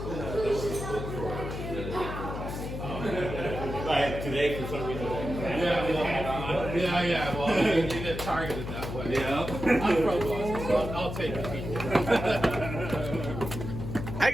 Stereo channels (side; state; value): left; noise; hum, 6 dB below the sound